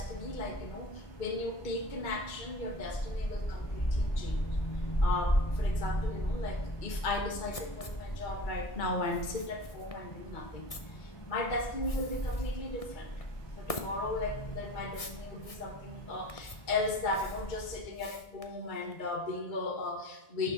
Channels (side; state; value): right; late; 1.6 ms